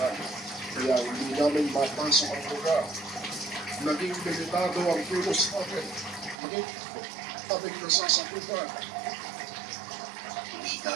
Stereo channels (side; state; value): left; drops out; at 6.4 s